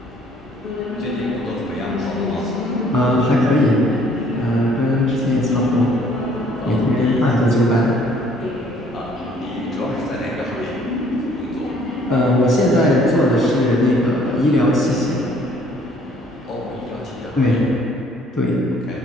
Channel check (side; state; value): both; normal; correlation 0.60